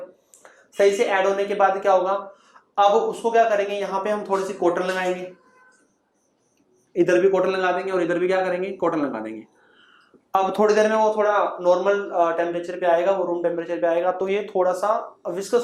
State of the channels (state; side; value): identical; both; correlation 1.00